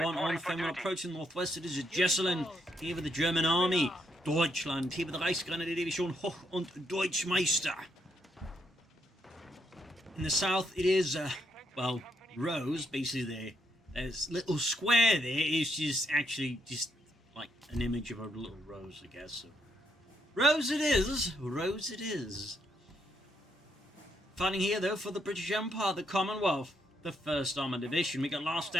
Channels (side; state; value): both; normal; correlation 0.76